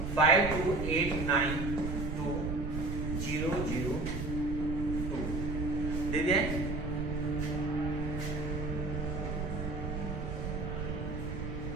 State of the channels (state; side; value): noise; right; rumble, 4 dB below the sound